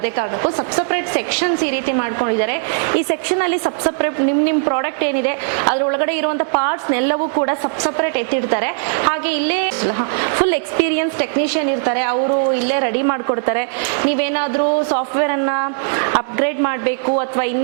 ಕಾರಣಕ್ಕೂ ಸಪ್ಸಪ್ರೇಟ್ ಸೆಕ್ಷನ್ಸ್ ಈ ರೀತಿ ಮಾಡ್ಕೊಂಡಿದ್ದಾರೆ ಈ ಸೆಕ್ಷನ್ ಅಲ್ಲಿ ಸಪ್ಸಪ್ರೇಟ್ ನಿಮ್ ಪ್ರಾಡಕ್ಟ್ ಏನಿದೆ ಅದ್ರ ಒಳಗಡೆ ಇರುವಂತ ಪಾರ್ಟ್ಸ್ ಎಲ್ಲವೂ ಕೂಡ ಸಪ್ಸಪ್ರೇಟ್ ಎತ್ತಿಡ್ತಾರೆ ಹಾಗೆ ಇಲ್ಲೇ ಫುಲ್ ಎಕ್ಸ್ಪೀರಿಯನ್ಸ್ ಟೆಕ್ನಿಷಿಯನ್ ಇರ್ತಾರೆ ಅವರು ಇಲ್ಲೇ ರೆಡಿ ಮಾಡ್ಕೊಡ್ತಾರೆ ನೀವೇನಾದ್ರೂ ಸಾಫ್ಟ್ವೇರ್ ಅನ್ನ ಅಪ್ಗ್ರೇಡ್ ಮಾಡಬೇಕು ಅಥವಾ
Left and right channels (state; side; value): silent; left; digital silence